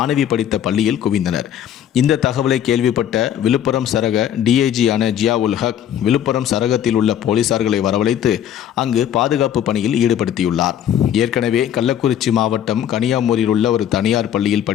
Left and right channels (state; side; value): quieter; right; 10.2 dB